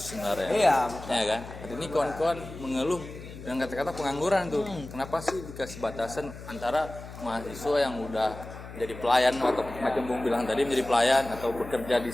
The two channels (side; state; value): left; noise; hum, 13 dB below the sound